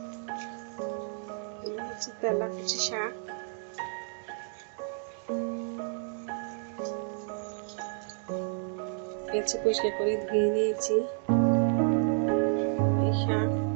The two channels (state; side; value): silent; left; 57 dB below the other